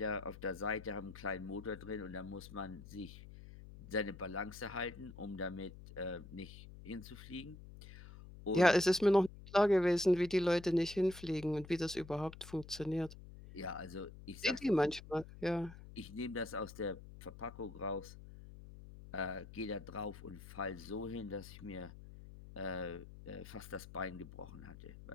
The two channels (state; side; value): noise; left; hum, 16 dB below the sound